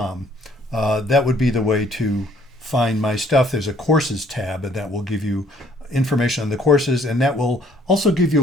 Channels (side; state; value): both; normal; correlation 0.62